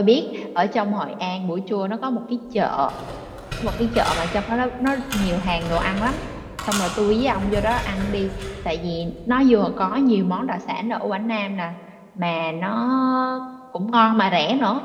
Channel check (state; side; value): identical; both; correlation 1.00